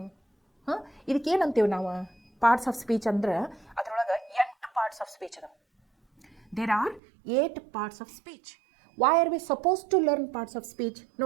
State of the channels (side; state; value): left; drops out; at 7.0 s